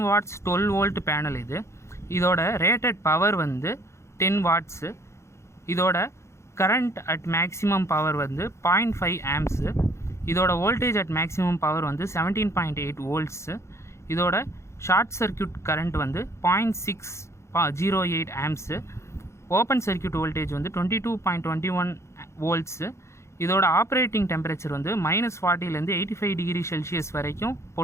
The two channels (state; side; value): late; right; 0.13 ms